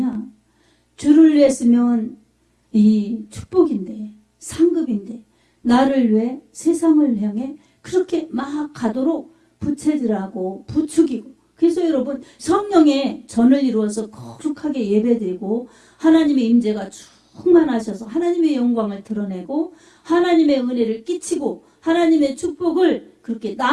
주를 위했으면 이 축복인데 상급인데 나를 위해 세상을 향해 그렇게 막 가도록 부채질하고 부추기고 그래서 여러분 성령의 전을 이루어서 거룩하게 예배드리고 하나님의 임재가 충만하셔서 하나님의 영광을 드러내고 하나님의 은혜를 끼치고 하나님의 축복을 그렇게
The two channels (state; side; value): identical; both; correlation 1.00